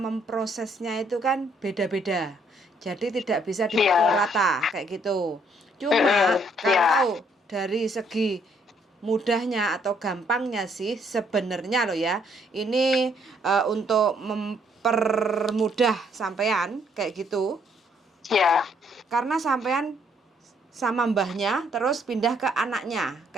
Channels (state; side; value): normal; both; correlation 0.68